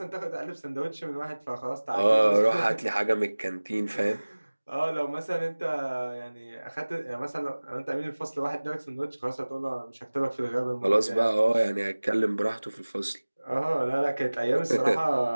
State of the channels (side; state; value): both; inverted; correlation -1.00